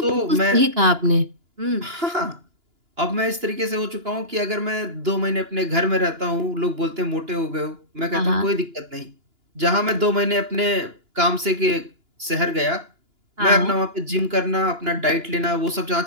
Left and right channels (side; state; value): left; late; 2.9 ms